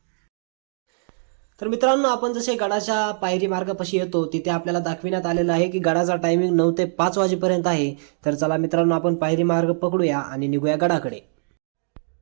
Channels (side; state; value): left; silent; digital silence